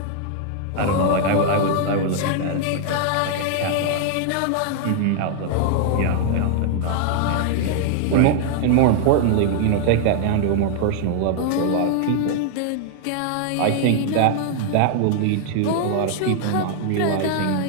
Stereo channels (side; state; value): both; different; correlation 0.00